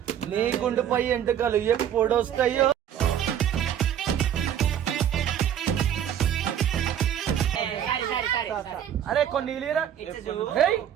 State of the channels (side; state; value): left; quieter; 9.8 dB